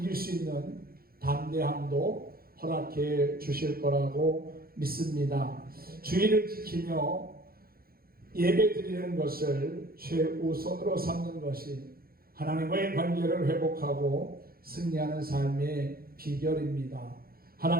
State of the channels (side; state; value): left; late; 0.43 ms